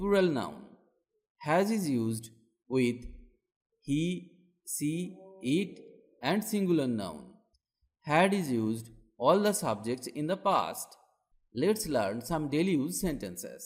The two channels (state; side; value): identical; both; correlation 1.00